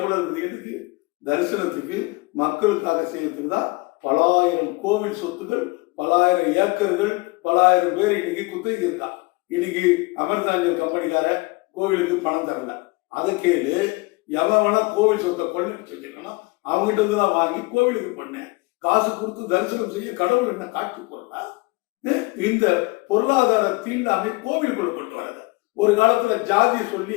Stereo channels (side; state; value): right; quieter; 25.7 dB